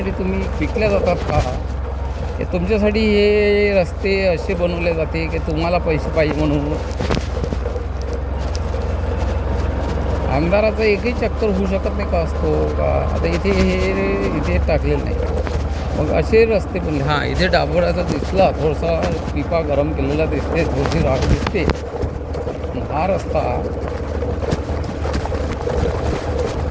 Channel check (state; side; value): identical; both; correlation 1.00